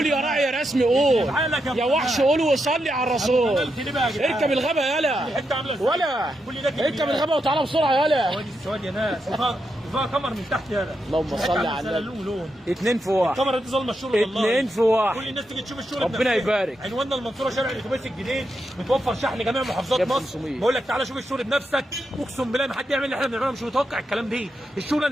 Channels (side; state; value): both; normal; correlation 0.84